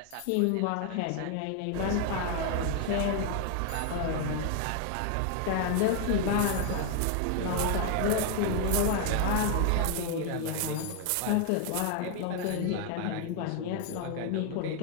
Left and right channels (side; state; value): both; different; correlation 0.00